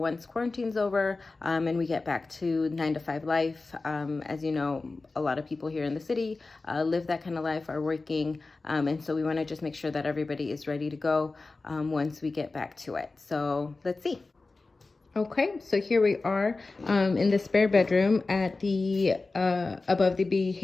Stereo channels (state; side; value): quieter; right; 3.6 dB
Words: quarantine's over and we get back to 9 to 5 life. As you know, a lot of people here in the city live that kind of life, are working, and so we want to just make sure that everybody is ready to go once we get back to it. So let's see. Okay, so here we are in the spare bedroom at the above the